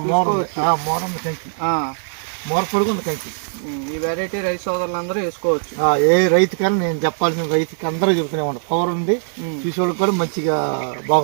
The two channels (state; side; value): silent; left; digital silence